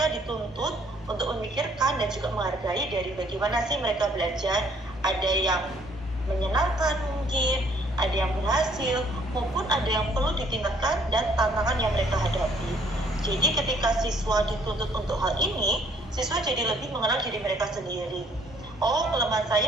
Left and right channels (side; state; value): both; normal; correlation 0.62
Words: dituntut untuk memikirkan dan juga menghargai dari bagaimana sih mereka belajar, ada yang menyenangkan mungkin, ada yang berhasil, maupun ada yang perlu ditingkatkan dan tantangan yang mereka hadapi. Jadi ketika siswa dituntut untuk hal ini, siswa jadi lebih mengenal diri mereka sendiri. Oh, kelemahan